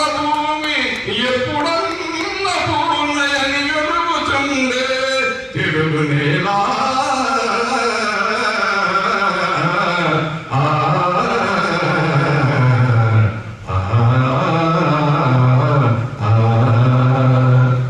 భూమి ఎప్పుడన్న పూర్ణయని వెలుగుచుండే తెలుగు నేల.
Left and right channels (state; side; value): identical; both; correlation 1.00